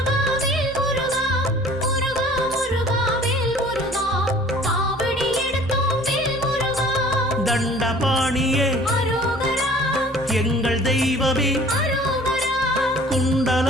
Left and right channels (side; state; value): both; normal; correlation 0.50